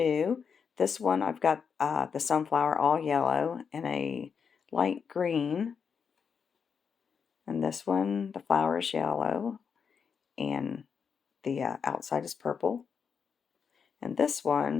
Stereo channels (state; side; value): quieter; right; 6.4 dB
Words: This one I've got the sunflower all yellow and a light green, and this one the flower is yellow and the outside is purple, and this